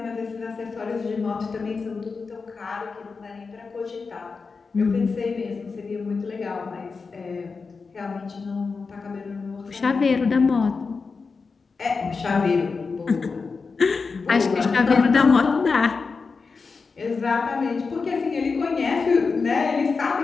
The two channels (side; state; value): right; quieter; 4.7 dB